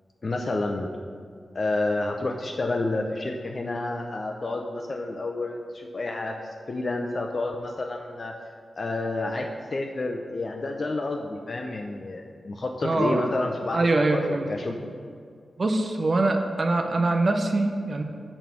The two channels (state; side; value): normal; both; correlation 0.92